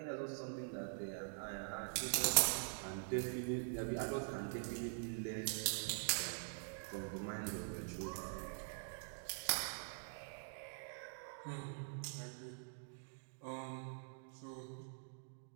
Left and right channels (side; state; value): left; silent; digital silence